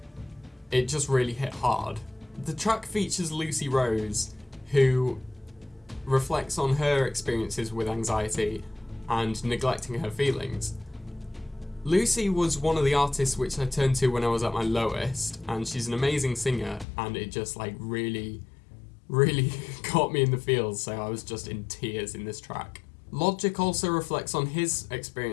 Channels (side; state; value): right; drops out; at 16.9 s